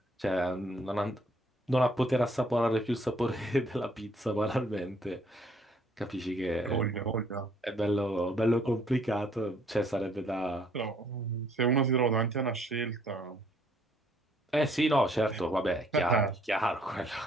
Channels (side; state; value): both; normal; correlation 0.64